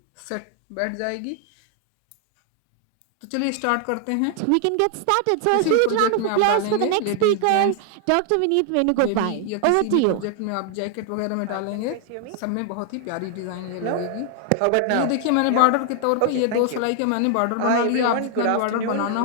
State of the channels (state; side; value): different; both; correlation 0.00